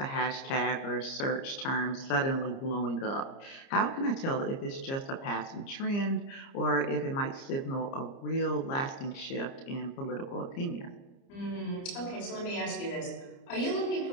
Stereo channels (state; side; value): late; right; 30 ms